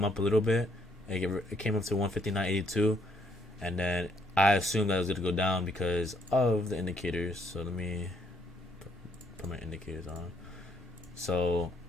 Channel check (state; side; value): normal; both; correlation 0.70